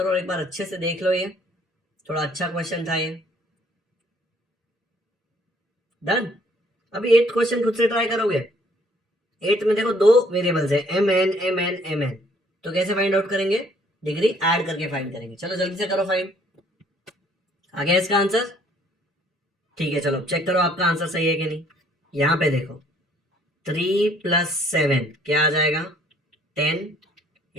और एक बार अच्छे से देख लो. ये थोड़ा अच्छा क्वेश्चन था ये. डन. अभी 8th क्वेश्चन खुद से ट्राई करोगे. 8th में देखो 2 वेरिएबल्स है mn. तो कैसे फाइंड आउट करेंगे? डिग्री ऐड करके फाइंड करेंगे. चलो जल्दी से करो फाइंड. आ गया इसका आंसर? ठीक है, चलो चेक करो आपका आंसर सही है कि नहीं. यहां पे देखो 3 + 7 क्या आ जाएगा? 10.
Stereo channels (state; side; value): normal; both; correlation 0.62